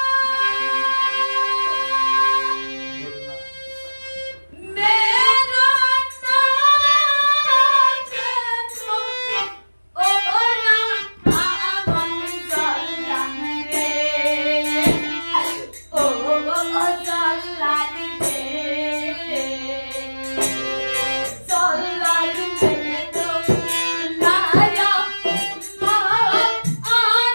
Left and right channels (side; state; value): both; inverted; correlation -1.00